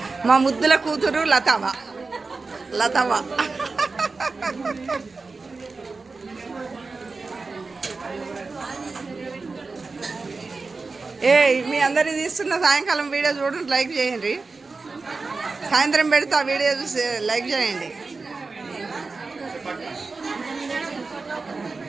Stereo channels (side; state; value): left; quieter; 4.0 dB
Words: మా ముద్దుల కూతురు లతావా. మీ అందరి తీస్తున్న సాయంకాలం వీడియో చూడండి, లైక్ చేయండి. సాయంత్రం పెడితే ఆ వీడియో చూసి లైక్ చేయండి.